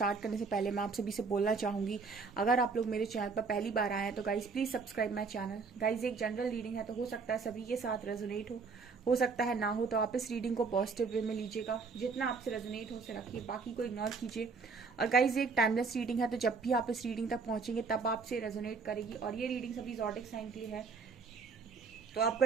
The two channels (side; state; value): left; quieter; 4.8 dB